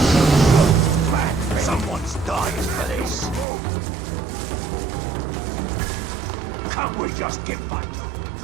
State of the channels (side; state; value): left; drops out; at 3.5 s